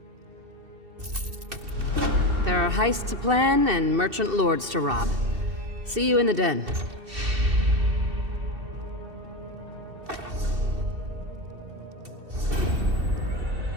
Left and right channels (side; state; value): left; late; 2.7 ms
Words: There are heists to plan and merchant lords to rob. See you in the den.